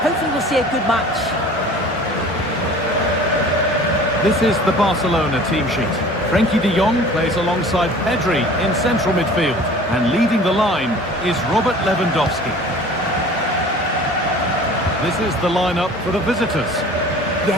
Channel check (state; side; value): normal; both; correlation 0.45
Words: Hopefully we'll see a good match. This is the Barcelona team sheet. Frenkie de Jong plays alongside Pedri in central midfield. And leading the line is Robert Lewandowski. This is the lineup for the visitors.